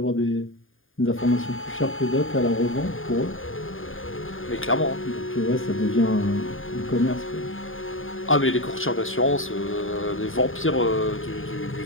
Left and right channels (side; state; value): right; late; 0.59 ms